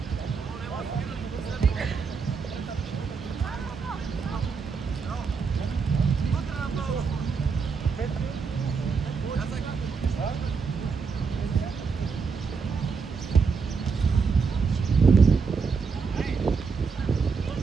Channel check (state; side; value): quieter; left; 5.3 dB